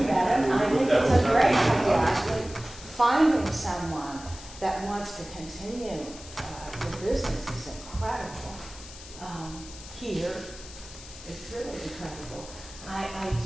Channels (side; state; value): left; noise; hiss, 16 dB below the sound